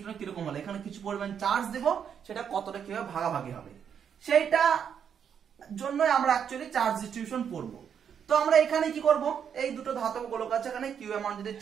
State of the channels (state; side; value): quieter; left; 7.8 dB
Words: কিরকম হলে, এখানে কিছু পরিমাণ চার্জ দেব, সেটা কতটা কিভাবে ভাগাভাগি হবে, সেইটা জন্যই আমরা অ্যাকচুয়ালি চার্জ ডিস্ট্রিবিউশন পড়বো। তো আমরা এখানে কি করব, এই দুটো ধাতব গোলক আছে, এখানে কিউ অ্যামাউন্ট যদি